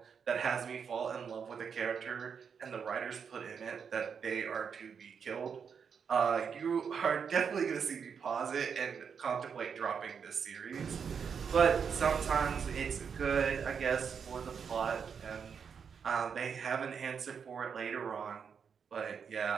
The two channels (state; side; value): quieter; left; 6.7 dB